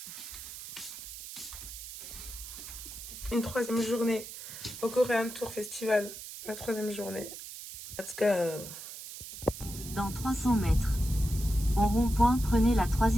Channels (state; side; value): noise; right; hiss, 11 dB below the sound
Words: Une 3e journée au Korean Tour Festival. La 3e journée. Let's go. Dans 300 mètres. Au rond-point, prenez la